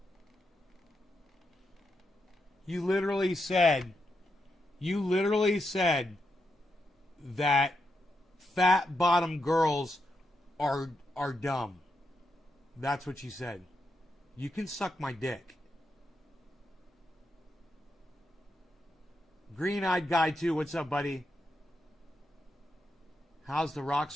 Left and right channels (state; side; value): normal; both; correlation 0.84